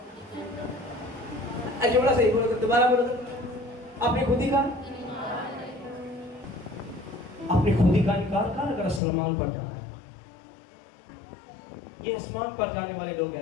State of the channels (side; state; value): right; drops out; at 9.0 s